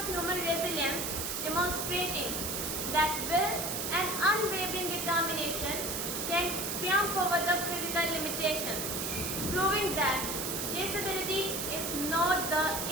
human resilience, demonstrating that will and unwavering determination can triumph over the physical limitations, proving that disability is not the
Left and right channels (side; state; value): right; noise; hiss, 2 dB below the sound